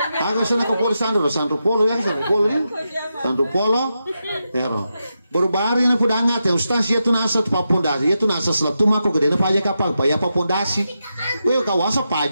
Agak sana ke Sanru polo ya, Sanru polo. Ya, baru na pudangat ya ustaz ya tu nasa tu papondasi, ya tu nasa selap tu mako gede na paja kapag pa ya papondasi. Kawasa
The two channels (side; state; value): both; inverted; correlation -0.87